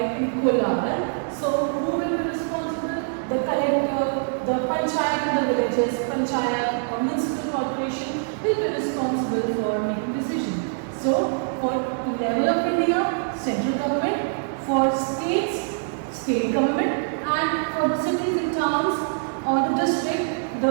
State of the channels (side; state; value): left; silent; 62 dB below the other